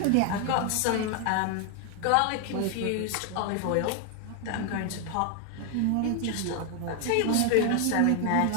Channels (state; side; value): different; both; correlation 0.00